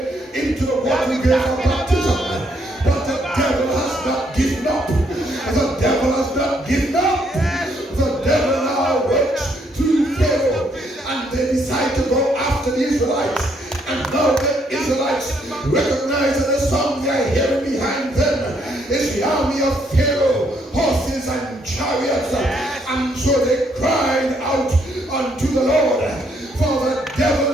into the water grave of baptism. But the devil has not given up. The devil has not given up. The devil now works through Pharaoh, and they decide to go after the Israelites. And now the Israelites recognize that the song they are hearing behind them is the army of Pharaoh, horses and chariots. And so they cried out unto the Lord. For the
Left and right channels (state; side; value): normal; both; correlation 0.71